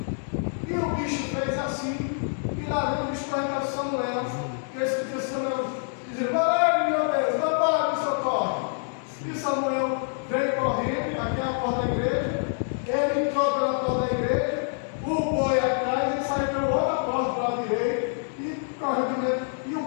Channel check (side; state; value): right; silent; 61 dB below the other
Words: e o bicho fez assim, e lá vem o bicho para Samuel, e esse dia Samuel dizia: vai, meu Deus, vai, me socorre. E Samuel veio correndo, aqui é a porta da igreja, ele entrou pela porta da igreja, o boi atrás, e saiu pela outra porta para a direita, e correu de medo, e o